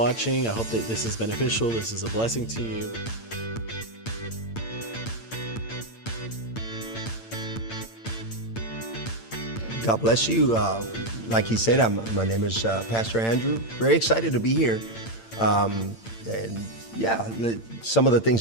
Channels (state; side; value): late; right; 8.8 ms